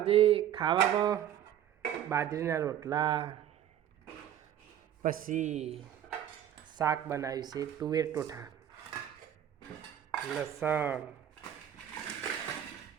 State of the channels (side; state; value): left; quieter; 10.5 dB